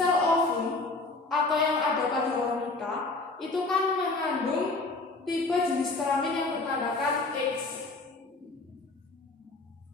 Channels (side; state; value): right; quieter; 3.3 dB